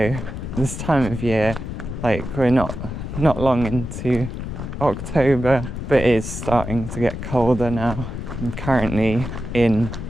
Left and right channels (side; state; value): left; noise; rumble, 7 dB below the sound